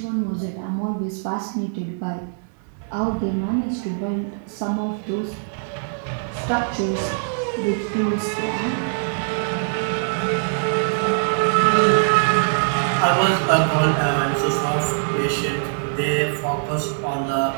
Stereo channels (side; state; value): left; silent; digital silence